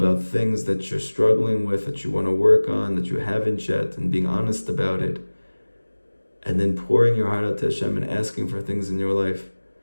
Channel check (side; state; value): both; inverted; correlation -1.00